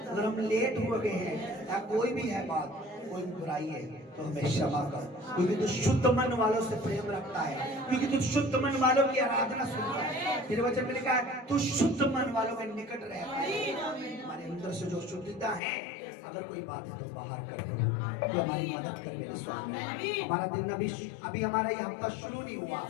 अगर हम लेट हो गए हैं या कोई भी है बात, कोई बुराई है तो हमें क्षमा कर, क्योंकि तू शुद्ध मन वालों से प्रेम रखता है, क्योंकि तू शुद्ध मन वालों की आराधना सुनता है। तेरे वचन में लिखा है तू शुद्ध मन वालों के निकट रहता है। हमारे अंदर से जो शुद्धता है, अगर कोई बात है तो बाहर कर दो, तो हमारी मदद कर मेरे स्वामी। हमारा दिन अभी हमारा ये हफ्ता शुरू नहीं हुआ,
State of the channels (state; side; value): drops out; right; at 15.6 s